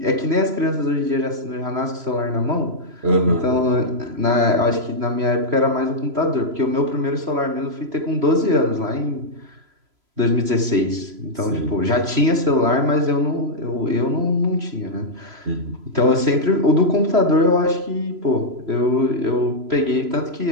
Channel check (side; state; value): left; late; 3.0 ms